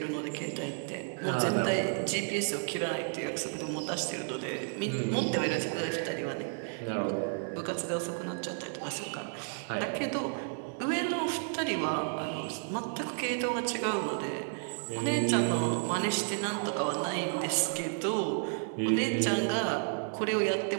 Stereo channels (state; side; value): silent; left; 56 dB below the other